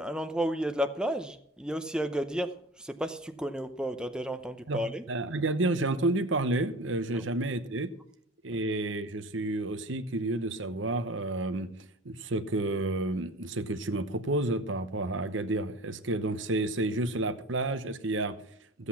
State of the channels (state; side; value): normal; both; correlation 0.38